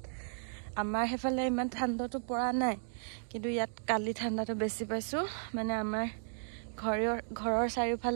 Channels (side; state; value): left; silent; digital silence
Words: আমাৰ হেফালে ইমান ঠাণ্ডাটো পৰা নাই কিন্তু ইয়াত কালি ঠাণ্ডাটো বেছি পাইছো মানে আমাৰ ঘৰৰ